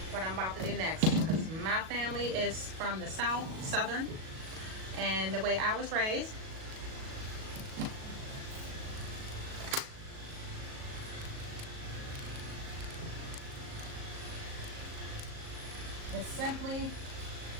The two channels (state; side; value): late; left; 37 ms